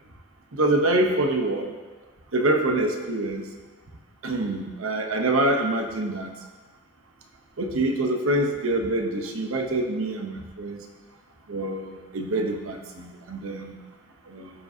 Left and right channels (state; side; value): normal; both; correlation 0.14